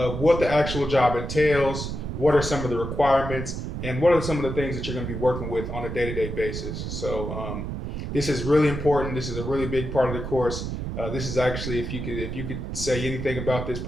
what the actual job entails, what are some of the requirements, and what are some of the things that you're going to be working with on a day-to-day basis. So, this is really important. This is a really big part of the course. This is actually, if you could say anything about this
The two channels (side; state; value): right; noise; rumble, 5 dB below the sound